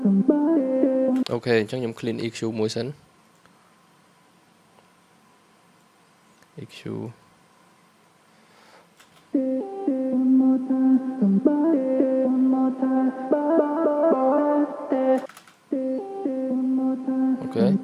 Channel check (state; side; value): identical; both; correlation 1.00